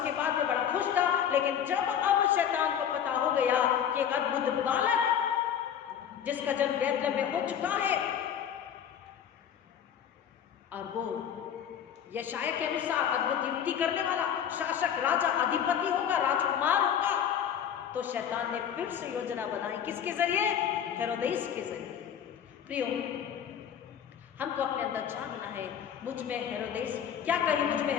बाद में बड़ा खुश था, लेकिन जब अब शैतान को पता हो गया कि एक अद्भुत बालक जिसका जन्म बैतलहम में हो चुका है और वो यशाया के अनुसार अद्भुत युक्ति करने वाला शासक, राजा, अधिपति होगा, राजकुमार होगा, तो शैतान ने फिर से योजना बनाई। किसके जरिए? हेरोदेस के जरिए। प्रियो, हमको अपने अंदर जानना है, मुझ में हेरोदेस, क्या कहीं मुझ में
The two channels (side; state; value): right; quieter; 8.9 dB